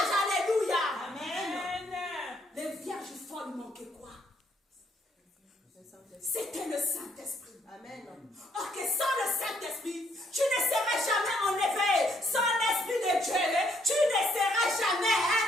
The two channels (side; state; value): both; normal; correlation 0.69